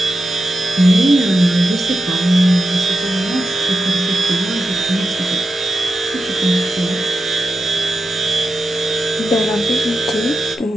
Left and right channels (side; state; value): both; normal; correlation 0.90